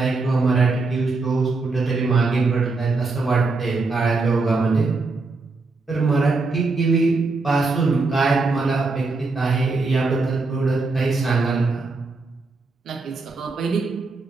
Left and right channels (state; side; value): quieter; left; 3.8 dB